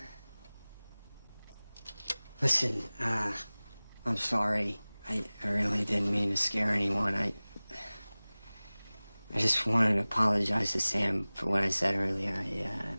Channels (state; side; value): inverted; both; correlation -0.99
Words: Listen, I'm sorry. I really didn't mean to scare anyone. I just wanted to apologize to Sam for what I said earlier.